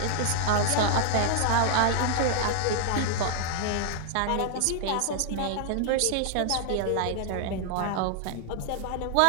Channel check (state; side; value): different; both; correlation 0.00